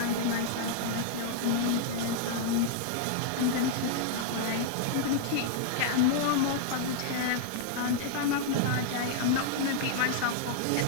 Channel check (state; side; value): different; both; correlation -0.01